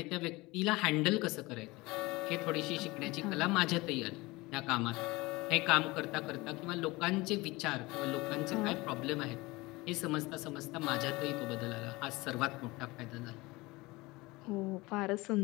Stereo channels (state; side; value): quieter; right; 22.1 dB